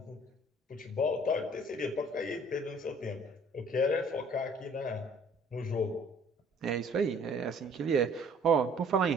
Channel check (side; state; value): both; normal; correlation 0.55